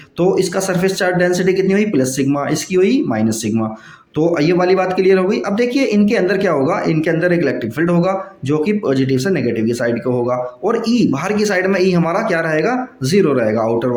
तो इसका सरफेस चार्ज डेंसिटी कितनी हुई, प्लस सिग्मा, इसकी हुई माइनस सिग्मा। तो ये वाली बात क्लियर हो गई। अब देखिए इनके अंदर क्या होगा, इनके अंदर एक इलेक्ट्रिक फील्ड होगा जो कि पॉजिटिव से नेगेटिव की साइड का होगा, और ई बाहर की साइड में ई हमारा क्या रहेगा, जीरो रहेगा आउटर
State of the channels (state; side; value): identical; both; correlation 1.00